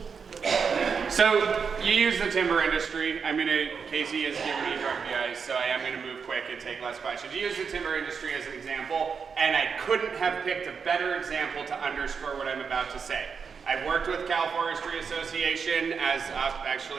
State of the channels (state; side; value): quieter; left; 6.0 dB